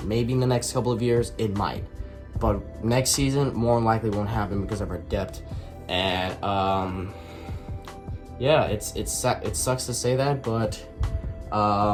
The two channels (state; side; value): identical; both; correlation 1.00